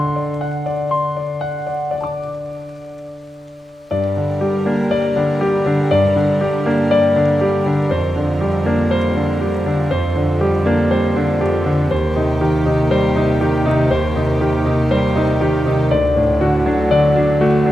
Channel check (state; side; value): normal; both; correlation 0.90